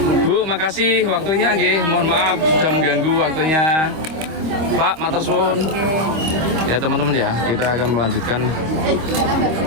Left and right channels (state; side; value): late; left; 25 ms